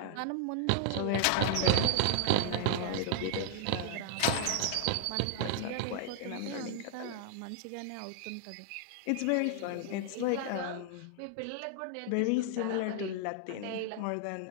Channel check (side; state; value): both; different; correlation 0.00